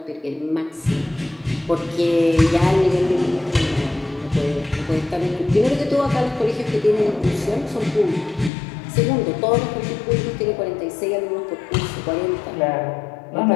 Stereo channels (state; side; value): drops out; right; at 8.5 s